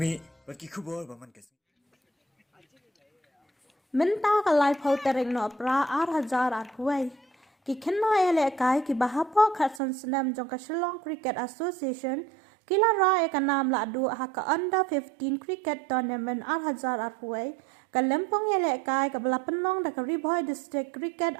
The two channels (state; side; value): drops out; left; at 9.8 s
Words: but Kikubo, Bamankas. Minta kalai phau tereng no pra 8,000 huai. Ki khenna ele kai ki bahapo khatsan snam jong ka Shillong Cricket Association kila ra e ka nam la du ha ka under 15 cricket tournament 8,000 huai. Ka lempong ele kai ka bala penong da ka Ribhoi District Cricket